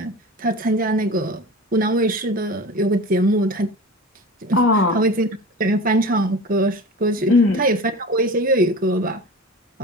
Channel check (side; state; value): both; normal; correlation 0.33